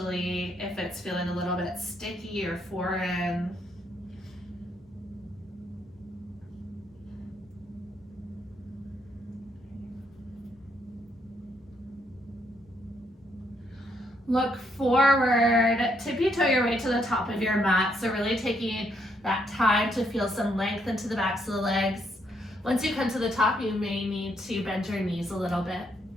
if it's feeling a little bit sticky or foreign. Look forward, tippy-toe your way to the top of your mat. So really taking that time to feel some length into the backs of the legs. Once you come to the top, you may need to bend your knees a little bit.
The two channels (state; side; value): normal; both; correlation 0.73